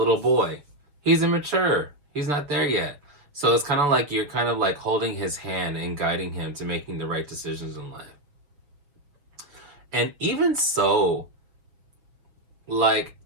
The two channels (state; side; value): late; left; 6.6 ms